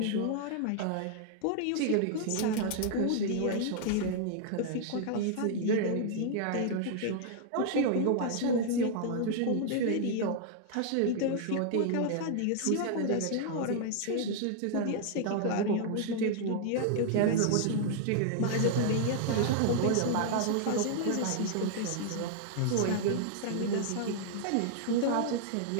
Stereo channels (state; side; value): different; both; correlation -0.01